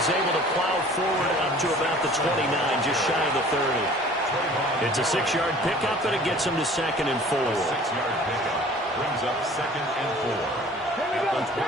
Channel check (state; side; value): normal; both; correlation 0.48